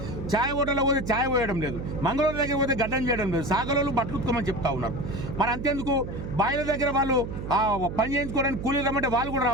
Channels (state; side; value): noise; right; hum, 7 dB below the sound